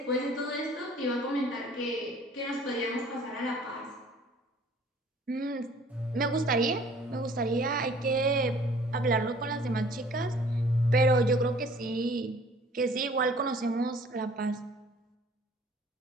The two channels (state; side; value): normal; both; correlation 0.54